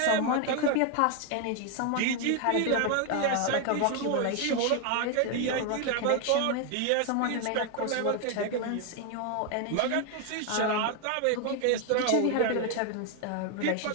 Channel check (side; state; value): both; different; correlation 0.01